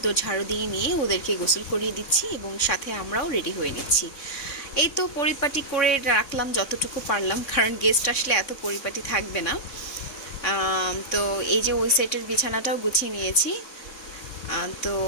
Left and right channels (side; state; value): right; late; 3.6 ms